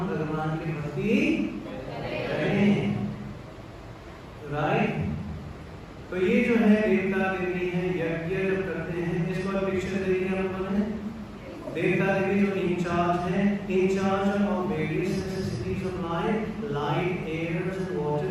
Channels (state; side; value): identical; both; correlation 1.00